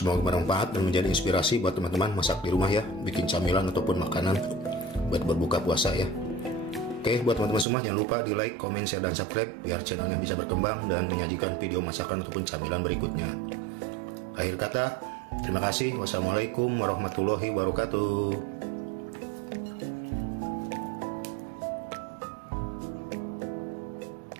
bermanfaat dan menjadi inspirasi buat teman-teman masak di rumah ya, bikin camilan ataupun makanan buat berbuka puasa ya. Oke, buat teman-teman semua jangan lupa di like, komen, share, dan subscribe biar channelnya bisa berkembang dan menyajikan video masakan ataupun camilan berikutnya. Akhir kata, terima kasih. Wassalamualaikum warahmatullahi wabarakatuh.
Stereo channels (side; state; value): left; drops out; at 7.7 s